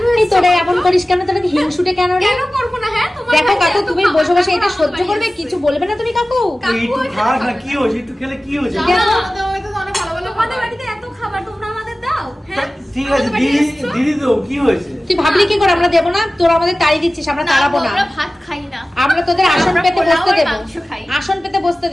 এই এসেছো? তোরা এমন করিস কেন? তোরা কি হিংসুটে কেন রে? কেন করবো না? হ্যাঁ তোমার দেখো বাড়িতে কাকু, এত তুমি খাবার বসে বসে এটা খাওয়া সহ্য আমাদের করবে? বাড়িতে কিছু বলবে না তুমি কাকু? একটু খাস না, কি হয়েছে? একটু খেলে কি হয়েছে? জানো আমাদের বাড়িতে তো অনেক ভালো ভালো তোমাদের খাবার। বাড়িতে এত খাবার তোমরা আমাদের দাও? হ্যাঁ ঠিক আছে, আমাদের বাড়িতে দিদি এসেছো? দিদি তো কি হয়েছে? তুই ভাবলি কি করে আমরা দেবো না? তোরা আমাদের তাড়ি দিচ্ছিস, আমরা তাড়াবো না। আমরা ভাত খাই না। আমরা তোদের আসন আমরা পেতে পোলাও বসতে আর দেবো, মাংস খাই। আসন পেতে বসতে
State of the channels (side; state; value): both; normal; correlation 0.96